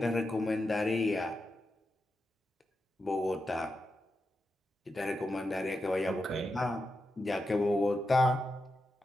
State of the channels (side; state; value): both; normal; correlation 0.88